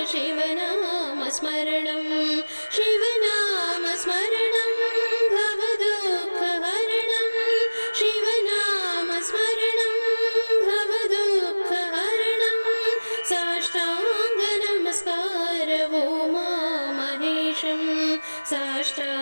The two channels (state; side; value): inverted; both; correlation -1.00